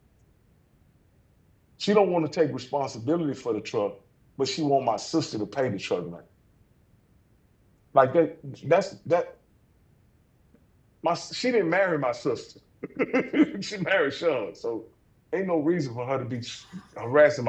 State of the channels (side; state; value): both; identical; correlation 1.00